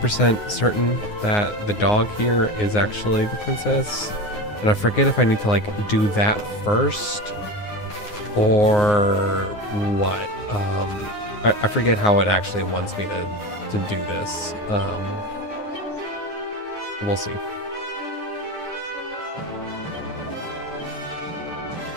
certain that the dog here is actually the princess. And I forget if I need to like do that first or what. I forget how it actually wants me to do this. We'll see.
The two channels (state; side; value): late; right; 9.6 ms